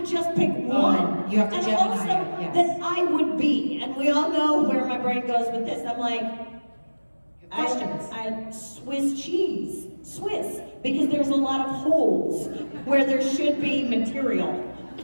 just pick one. You have to and Gemini also it, yes. that I would be, and we all know where my brain goes with this. I'm like, You're Questions? Swiss cheese. Swiss, because there's a lot of holes where there should be material.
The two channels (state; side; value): inverted; both; correlation -1.00